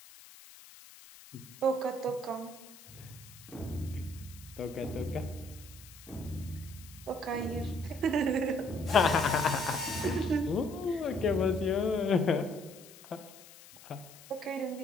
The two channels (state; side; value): noise; left; hiss, 19 dB below the sound